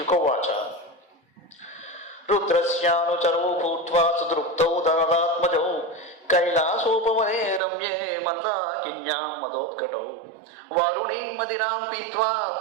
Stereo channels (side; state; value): left; drops out; at 7.6 s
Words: రుద్రస్యానుచరౌ భూత్వా సుదృప్తౌ ధనదాత్మజౌ కైలాసోపవనే రమ్యే మందాకిన్యాం మదోత్కటౌ వారుణీం మదిరాం పీత్వా